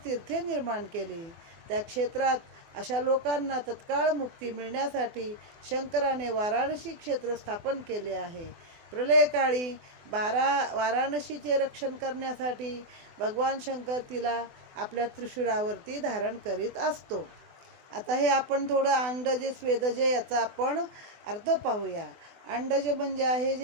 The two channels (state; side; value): late; left; 24 ms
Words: तीर्थे निर्माण केली. त्या क्षेत्रात अशा लोकांना तत्काळ मुक्ती मिळण्यासाठी शंकराने वाराणसी क्षेत्र स्थापन केले आहे. प्रलयकाळी वाराणसीचे रक्षण करण्यासाठी भगवान शंकर तिला आपल्या त्रिशूळावरती धारण करीत असतो. आता हे आपण थोडं अंडजे स्वेदजे याचा आपण अर्थ पाहूया. अंडज म्हणजे आहे